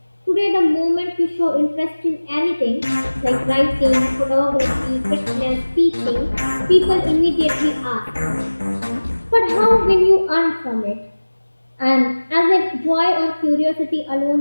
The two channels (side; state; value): both; inverted; correlation -1.00